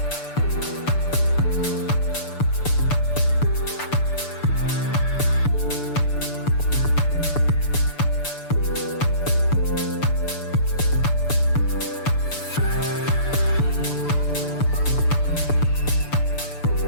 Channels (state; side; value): late; right; 6.8 ms